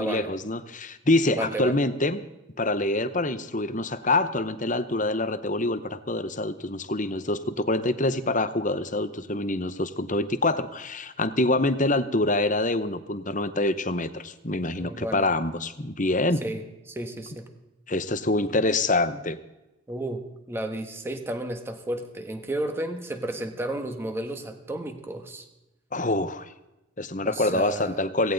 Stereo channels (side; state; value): both; normal; correlation 0.22